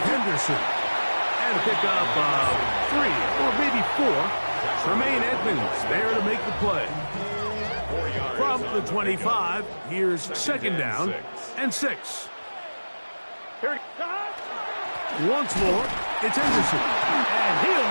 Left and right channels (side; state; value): both; inverted; correlation -1.00